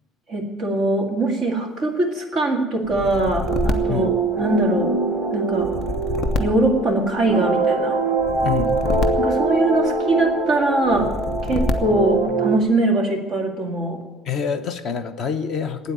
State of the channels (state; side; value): normal; both; correlation 0.50